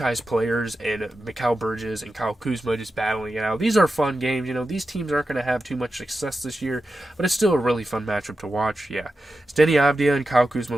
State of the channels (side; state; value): both; normal; correlation 0.91